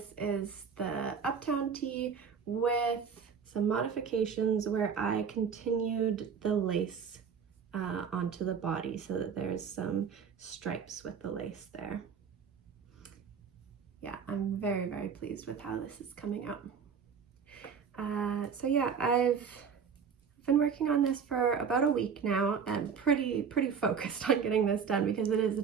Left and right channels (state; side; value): quieter; left; 6.6 dB